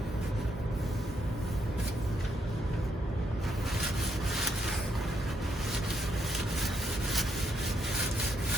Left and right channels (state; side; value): normal; both; correlation 0.76